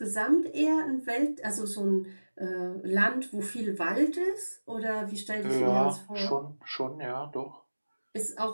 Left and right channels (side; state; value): both; inverted; correlation -1.00